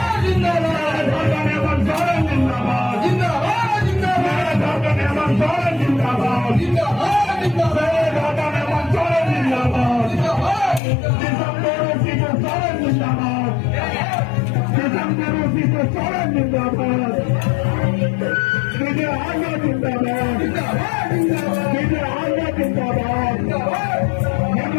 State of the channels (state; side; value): drops out; right; at 10.8 s